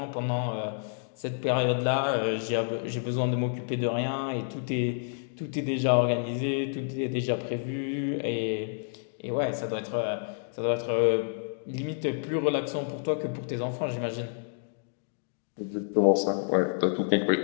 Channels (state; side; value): silent; right; digital silence